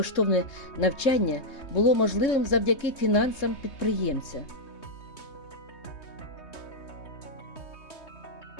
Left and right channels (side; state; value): right; late; 3.2 ms